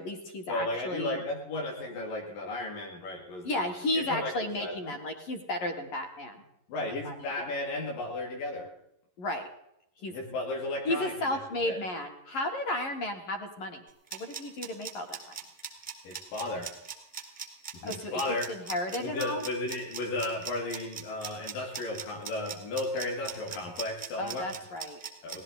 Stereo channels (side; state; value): right; late; 11 ms